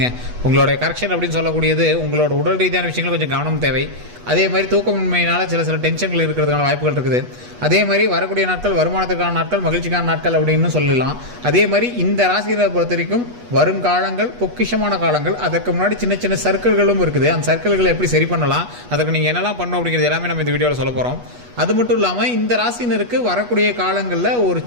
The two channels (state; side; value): late; left; 8.2 ms